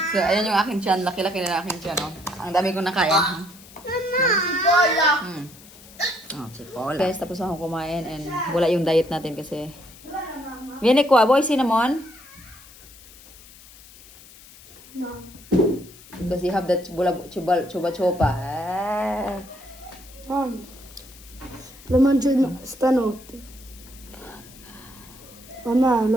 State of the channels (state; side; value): noise; left; hiss, 21 dB below the sound